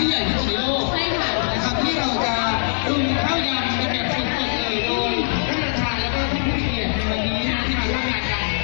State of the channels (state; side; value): silent; right; 65 dB below the other